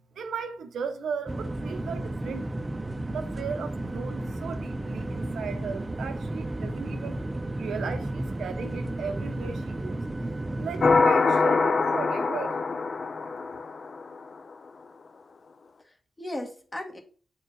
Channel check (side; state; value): both; normal; correlation 0.89